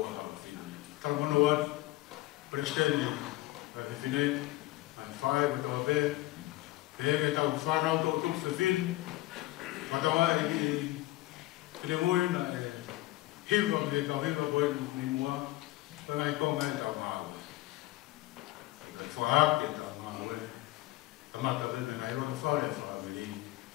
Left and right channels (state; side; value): quieter; right; 18.0 dB